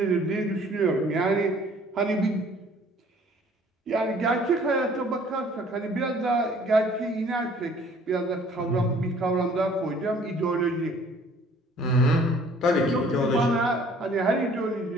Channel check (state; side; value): normal; both; correlation 0.55